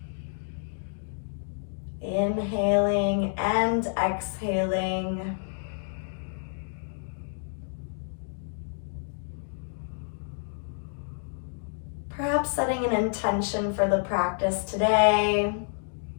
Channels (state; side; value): silent; right; digital silence